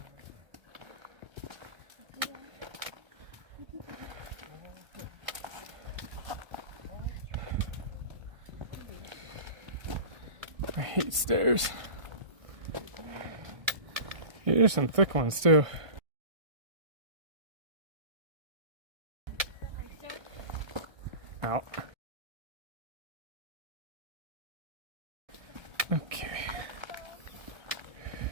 I hate stairs. Here's some thick ones too. Out. Okay.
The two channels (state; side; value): late; left; 1.6 ms